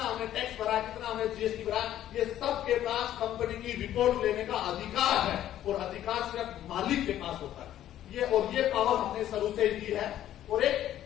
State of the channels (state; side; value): quieter; right; 12.1 dB